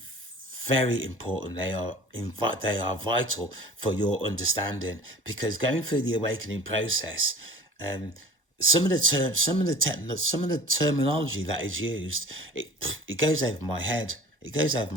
very important. They are vital for your understanding, because going through the awakening process, some of the terminology that is used, it goes over my head. It goes over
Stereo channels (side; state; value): both; normal; correlation 0.43